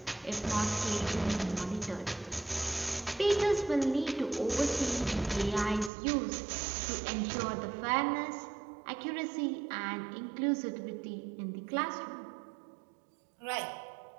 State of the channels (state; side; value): drops out; left; at 5.9 s